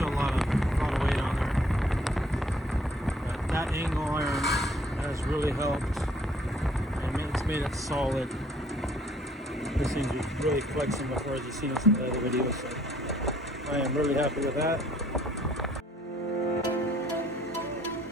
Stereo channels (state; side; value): normal; both; correlation 0.61